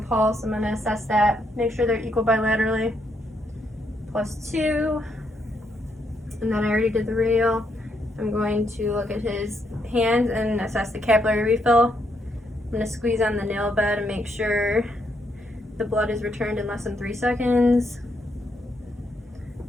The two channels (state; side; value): normal; both; correlation 0.76